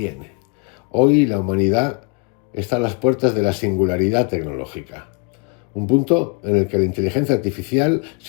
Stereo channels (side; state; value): right; quieter; 34.0 dB